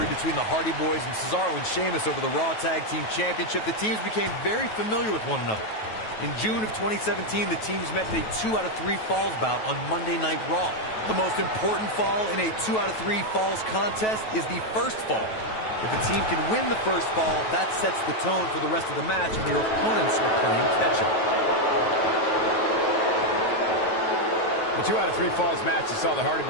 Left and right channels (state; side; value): late; right; 9.2 ms